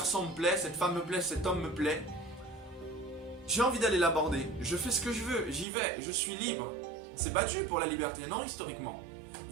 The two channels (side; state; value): left; drops out; at 5.7 s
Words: me plaît, cette femme me plaît, cet homme me plaît. J'ai envie d'aller l'aborder, je fais ce que je veux, j'y vais, je suis libre. C'est battu pour la liberté, non historiquement.